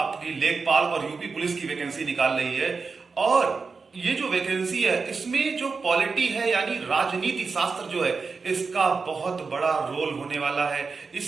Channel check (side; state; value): left; quieter; 4.7 dB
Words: लेखपाल और यूपी पुलिस की वैकेंसी निकाल रही है। और ये जो वैकेंसी है इसमें जो पॉलिटी है यानी राजनीति शास्त्र जो है, इसका बहुत बड़ा रोल होने वाला है।